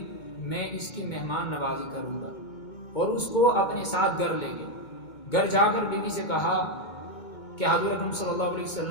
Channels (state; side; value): late; right; 2.2 ms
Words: میں اس کی مہمان نوازی کروں گا، اور اس کو اپنے ساتھ گھر لے گئے۔ گھر جا کر بیوی سے کہا کہ حضور اکرم صلی اللہ علیہ